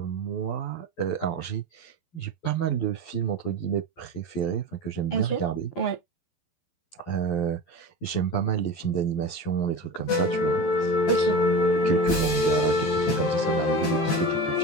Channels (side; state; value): right; late; 12 ms